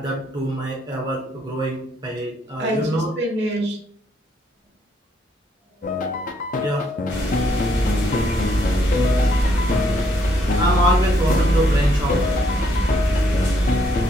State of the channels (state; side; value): normal; both; correlation 0.71